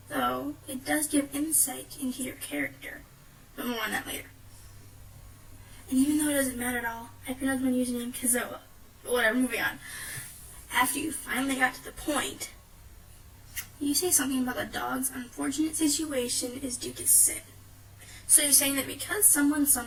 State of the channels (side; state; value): both; identical; correlation 1.00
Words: Though, it does give insight into your character, but more on that later. And even though it doesn't matter at all, I pronounced my username Kezzoa. But whatever, moving on. After you finally got to the point, you say something about the dog's unfortunate situation is due to sin. So you're saying that because someone